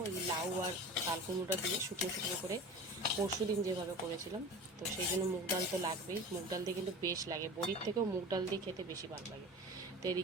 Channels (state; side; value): normal; both; correlation 0.34